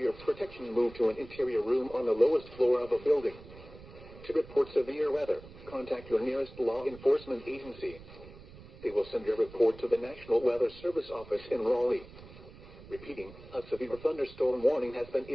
protection, move to an interior room on the lowest floor of a building. To report severe weather, contact your nearest law enforcement agency. They will send your report to the National Weather Service office in Raleigh. Repeating, a severe thunderstorm warning has been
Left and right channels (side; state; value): right; noise; rumble, 18 dB below the sound